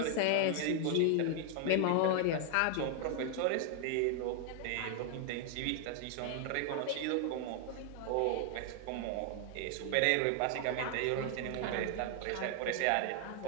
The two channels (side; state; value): both; different; correlation 0.00